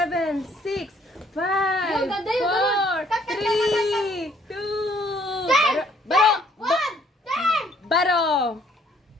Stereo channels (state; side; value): normal; both; correlation 0.63